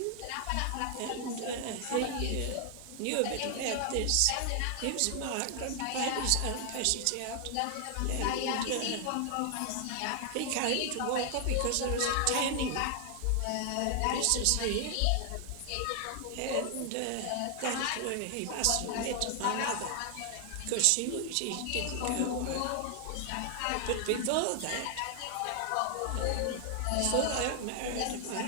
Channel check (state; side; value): different; both; correlation 0.00